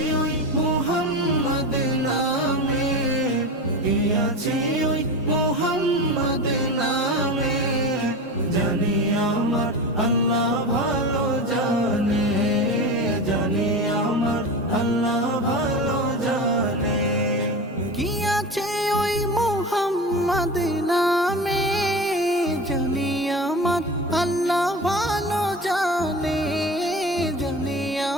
ওই মুহাম্মদ নামে, কি আছে ওই মুহাম্মদ নামে, জানি আমার আল্লাহ ভালো জানে, জানি আমার আল্লাহ ভালো জানে। কি আছে ওই মুহাম্মদ নামে, জানি আমার আল্লাহ ভালো জানে, জানি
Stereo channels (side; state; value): both; normal; correlation 0.28